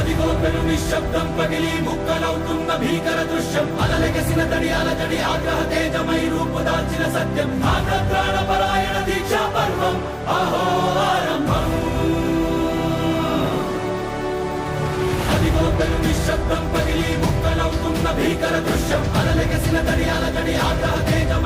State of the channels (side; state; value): both; identical; correlation 1.00